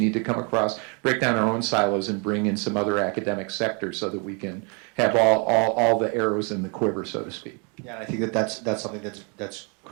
to break down our own silos and bring in some other academic sectors so that we can have all the arrows in the quiver, so to speak. Yeah, and I think that's something that's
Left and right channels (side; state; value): left; quieter; 34.9 dB